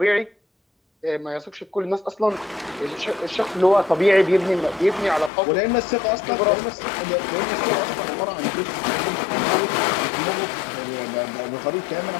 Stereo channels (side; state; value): right; drops out; at 5.3 s